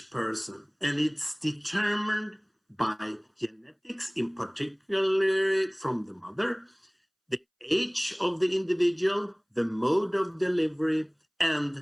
person, and it's determined by genetics, in particular from the mother, the age of the individual, the mode of delivery,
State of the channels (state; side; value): identical; both; correlation 1.00